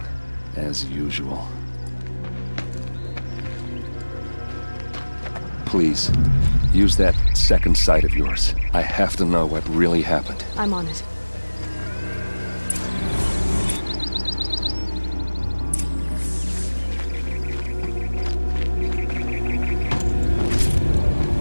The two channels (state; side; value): inverted; both; correlation -1.00